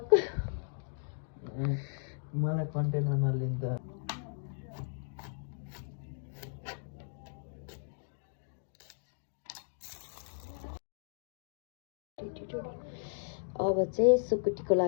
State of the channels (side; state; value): right; silent; digital silence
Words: मलाई कन्टेन्ट नलिन्छ। अब चाहिँ सुकुटीको